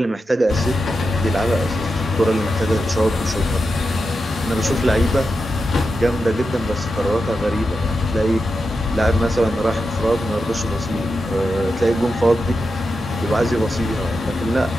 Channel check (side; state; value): both; normal; correlation 0.89